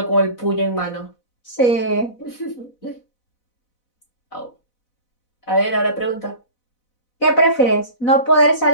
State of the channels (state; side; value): late; right; 4.0 ms